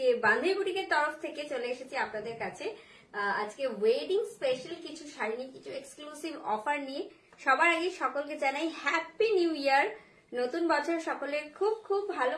বান্ধবী বুটিকের তরফ থেকে চলে এসেছি আপনাদের কাছে আজকে ওয়েডিং স্পেশাল কিছু শাড়ি নিয়ে কিছু এক্সক্লুসিভ অফার নিয়ে। সবার আগে সকলকে জানাই হ্যাপি নিউ ইয়ার। নতুন বছর সকলের খুব খুব ভালো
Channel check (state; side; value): identical; both; correlation 1.00